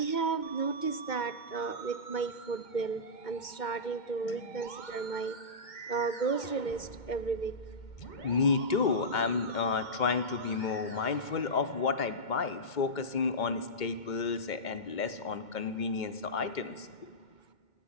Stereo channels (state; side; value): late; right; 2.2 ms